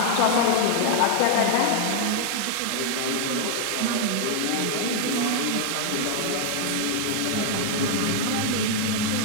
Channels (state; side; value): different; both; correlation 0.00